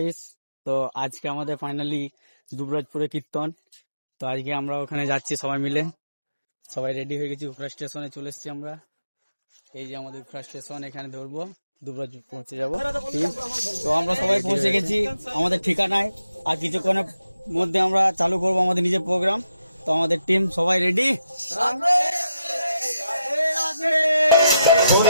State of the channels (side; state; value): both; inverted; correlation -0.83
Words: তো আজকে আমাদের ফাইনালি দুবরাজপুরে কীর্তন। তো আজকে আমরা ওখানে যাচ্ছি সবাই মিলে। সবাই রেডি হয়ে গেছি, উখড়া স্টেশনে চলে এসেছি আমরা। এই যে আমাদের উখড়া স্টেশন, এখানে ধরবো, দুবরাজপুর পৌঁছে যাবো। তো আমরা সবাই পৌঁছে গেছি আমাদের ঠিকানায়। আর কিছুক্ষণের মধ্যে আমরা চালু করব আমাদের নিজের প্রোগ্রাম। তো আমাদের টিম সবাই রেডি।